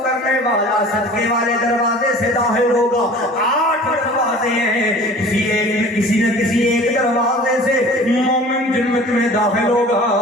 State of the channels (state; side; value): normal; both; correlation 0.44